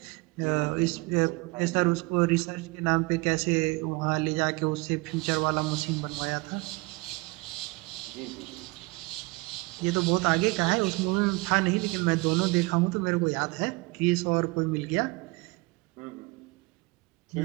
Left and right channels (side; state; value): left; quieter; 25.0 dB